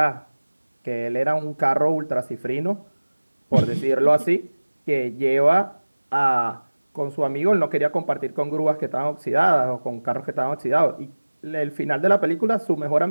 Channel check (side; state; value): both; inverted; correlation -1.00